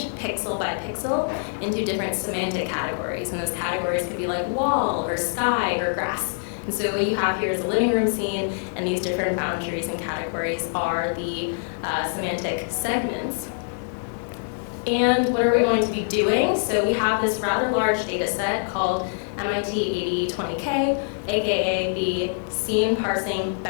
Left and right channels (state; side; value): silent; right; digital silence